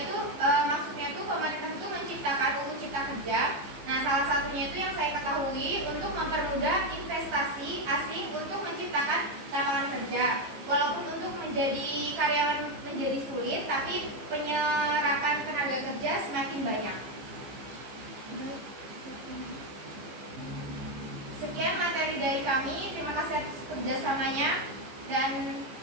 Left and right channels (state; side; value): late; left; 15 ms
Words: maksudnya itu pemerintah itu menciptakan UU Cipta Kerja. Nah, salah satunya itu yang saya ketahui untuk mempermudah investasi asing untuk menciptakan lapangan kerja. Walaupun untuk menjadi karyawan menjadi sulit, tapi